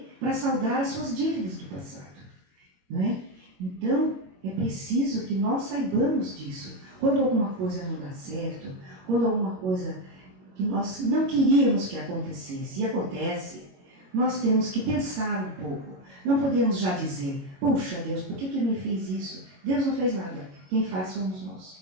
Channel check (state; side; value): late; left; 21 ms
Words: Para saldar as suas dívidas do passado. Não é? Então, é preciso que nós saibamos disso. Quando alguma coisa não dá certo, quando alguma coisa que nós não queríamos que acontecesse, e acontece, nós temos que pensar um pouco. Não podemos já dizer, puxa Deus, por que me fez isso? Deus não fez nada, quem faz somos